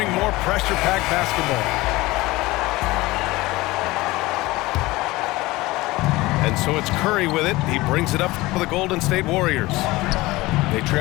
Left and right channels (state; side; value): quieter; right; 20.2 dB